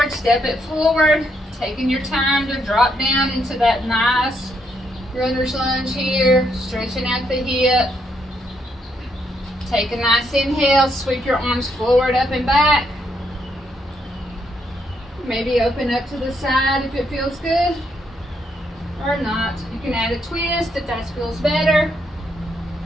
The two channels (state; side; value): normal; both; correlation 0.76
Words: step it forward. Taking your time to drop down into that nice runner's lunge here. Stretching out the hip. Take a nice inhale, sweep your arms forward, up and back. Maybe open up to the side if it feels good, or not. You can add a twist if that feels better.